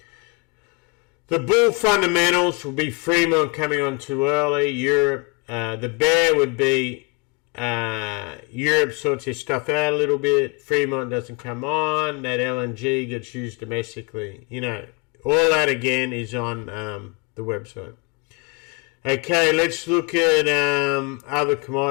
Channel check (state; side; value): quieter; right; 29.6 dB